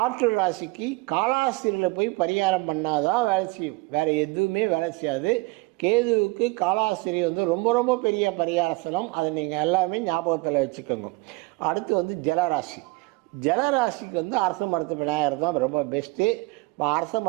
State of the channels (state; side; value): quieter; left; 24.5 dB